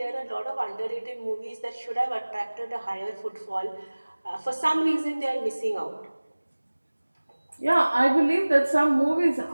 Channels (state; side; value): inverted; both; correlation -1.00